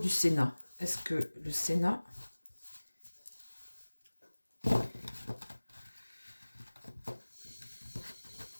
Sénat? Est-ce que le Sénat...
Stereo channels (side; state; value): both; inverted; correlation -1.00